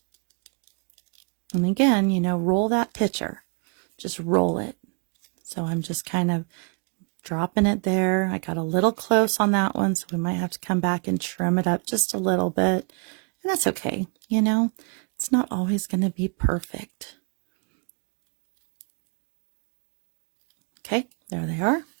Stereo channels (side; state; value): left; quieter; 36.0 dB